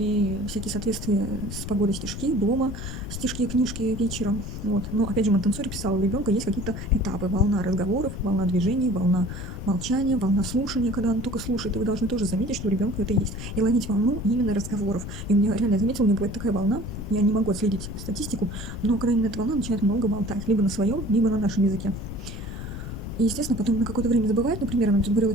всякие соответствия с погодой стишки, дома стишки, книжки вечером. Вот. Но опять же, Монтессори писал, у ребенка есть какие-то этапы. Волна разговоров, волна движений, волна молчания, волна слушания, когда он только слушает. И вы должны тоже заметить, что у ребенка это есть. И ловить волну именно разговоров. И у меня реально, я заметила, у меня бывает такая волна, я не могу отследить статистику, но когда именно эта волна начинает много болтать, либо на своем, либо на нашем языке. И, естественно, потом на какое-то время забывает, например, она тут говорила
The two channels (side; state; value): left; noise; rumble, 8 dB below the sound